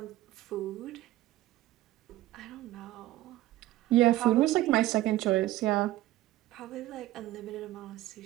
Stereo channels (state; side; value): quieter; left; 15.7 dB